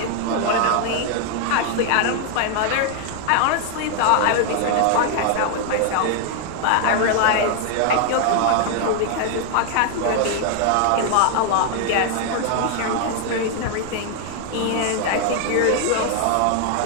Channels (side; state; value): both; different; correlation 0.00